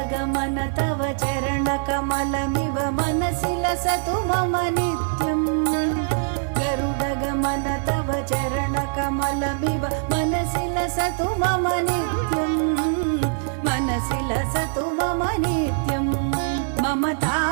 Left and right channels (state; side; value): silent; left; 63 dB below the other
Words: गरुडगमन तव चरणकमलमिव मनसि लसतु मम नित्यम् गरुडगमन तव चरणकमलमिव मनसि लसतु मम नित्यम् मनसि लसतु मम नित्यम् मम